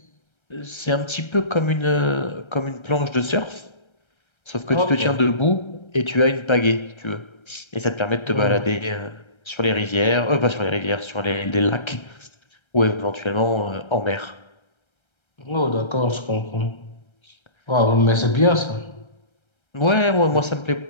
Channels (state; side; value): late; right; 1.3 ms